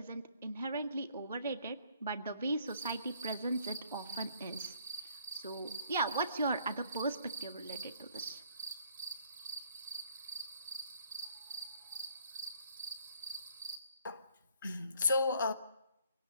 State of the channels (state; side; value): inverted; both; correlation -0.63